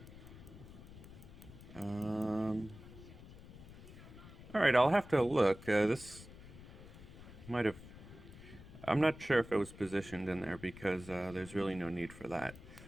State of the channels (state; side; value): noise; left; rumble, 16 dB below the sound